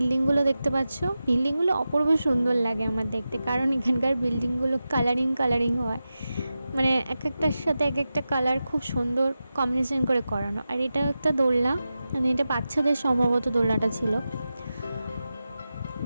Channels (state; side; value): inverted; both; correlation -0.92